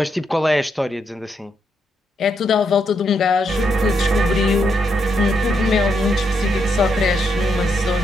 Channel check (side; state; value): both; normal; correlation 0.80